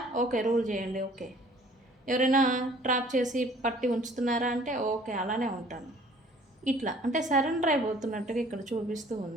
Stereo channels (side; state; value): both; normal; correlation 0.54